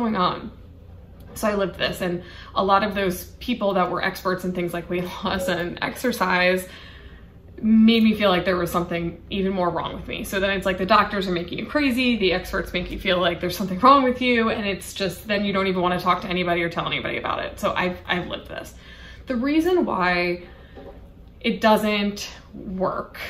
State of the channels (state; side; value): identical; both; correlation 1.00